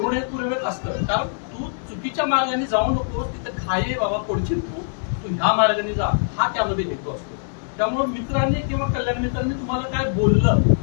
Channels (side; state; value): right; silent; digital silence